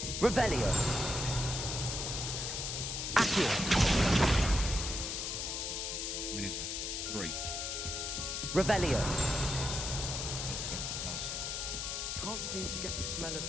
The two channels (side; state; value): left; noise; hiss, 3 dB below the sound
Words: Revelio. Accio. How many is that? 3. Revelio. That's something else. Can't seem to get the smell